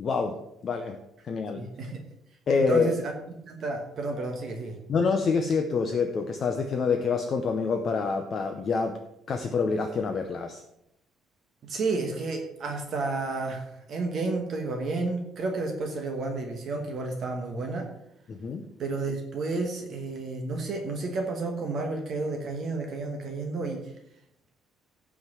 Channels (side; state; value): both; normal; correlation 0.70